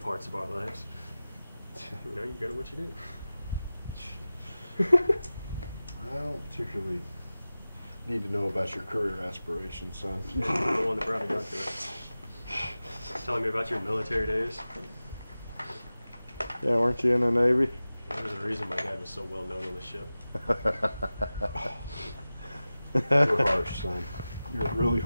of our lives. You know, you go to what you do. I don't particularly need to know about your career aspirations, son. You're the one that brought me onto it. Telling me about your military days. Yeah, weren't you in the Navy? There was a reason my dad was so well known on the ship. You're harsh, son. You're really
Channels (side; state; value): both; inverted; correlation -0.96